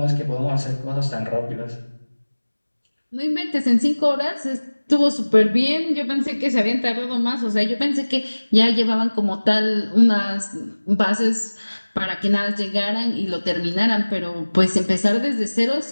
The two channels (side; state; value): both; inverted; correlation -1.00